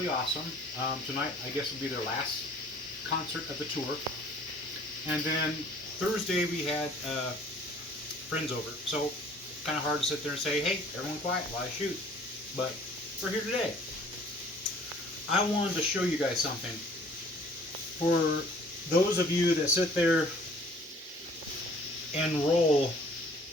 awesome. Tonight, I guess, will be their last concert of the tour. And then Thursday, we had friends over. So, kind of hard to sit there and say, hey, everyone quiet while I shoot. But we're here today. I wanted to show you guys something. For those of you that sit there and roll,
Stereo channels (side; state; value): both; normal; correlation 0.53